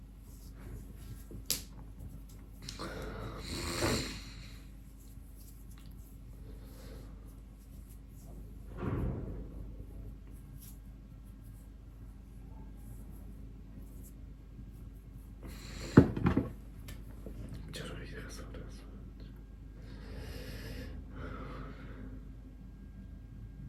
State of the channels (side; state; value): both; identical; correlation 1.00